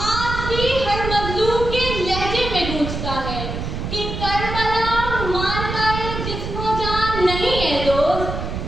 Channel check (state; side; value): noise; right; rumble, 5 dB below the sound